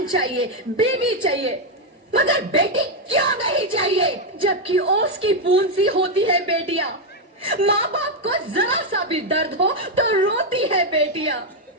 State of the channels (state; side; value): normal; both; correlation 0.02